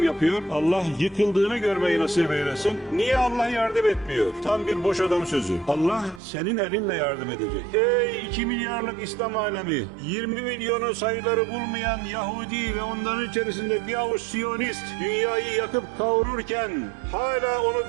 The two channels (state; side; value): drops out; left; at 6.2 s